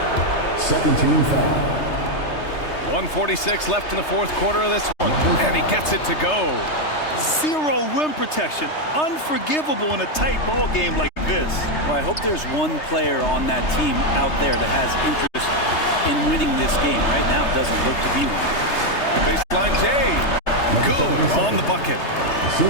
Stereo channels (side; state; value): right; late; 3.3 ms